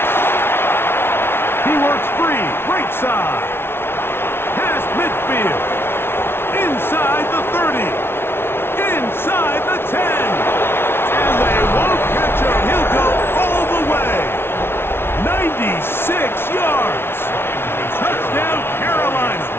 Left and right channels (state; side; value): late; right; 0.12 ms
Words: He works free, right side. Past midfield. Inside the 30. Inside the 10. And they won't catch him. He'll go all the way. 96 yards. Touchdown, Carolina.